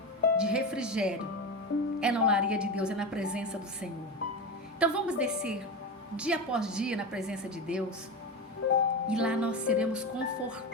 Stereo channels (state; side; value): normal; both; correlation 0.20